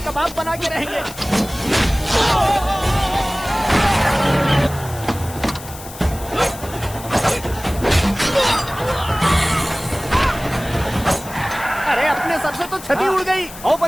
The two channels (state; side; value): noise; left; hiss, 15 dB below the sound